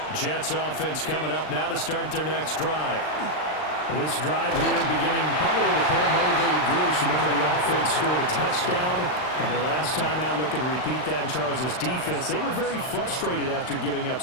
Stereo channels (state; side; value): late; right; 39 ms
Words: Jets offense coming up now to start their next drive. This drive here beginning probably with a pair of motivated groups. Remember, the offense scored a touchdown on their last time out, looking to repeat that in Charles' defense. They were very frustrated after giving up